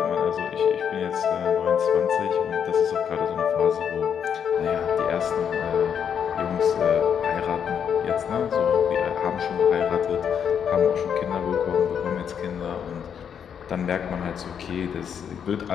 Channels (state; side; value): quieter; right; 7.9 dB